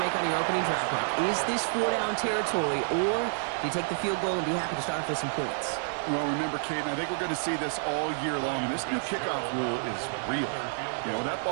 make on your opening drive, Brock. Is this 4-down territory, or do you take the field goal and be happy to start off with some points? Well, remember, Kate, and I think we're going to see this all year long. This new kickoff rule is real. You know, that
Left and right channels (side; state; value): left; silent; digital silence